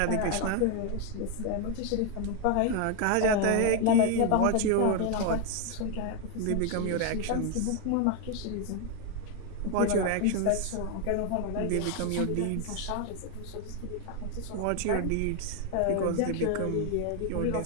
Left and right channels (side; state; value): both; different; correlation 0.01